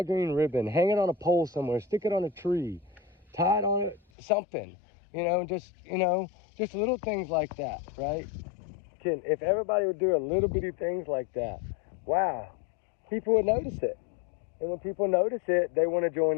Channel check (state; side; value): drops out; right; at 4.0 s